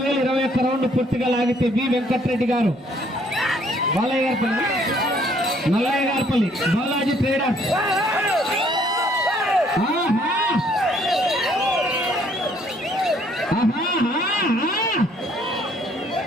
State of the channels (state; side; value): normal; both; correlation 0.64